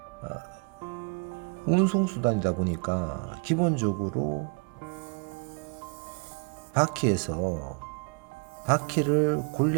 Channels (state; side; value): quieter; left; 36.3 dB